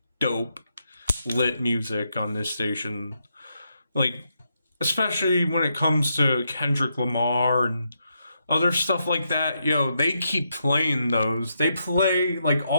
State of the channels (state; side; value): inverted; both; correlation -0.81